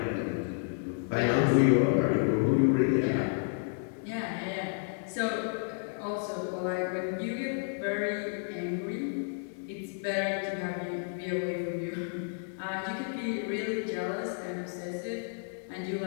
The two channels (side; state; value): right; silent; digital silence